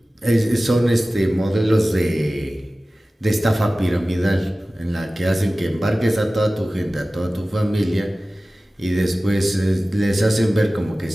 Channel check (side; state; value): both; normal; correlation 0.97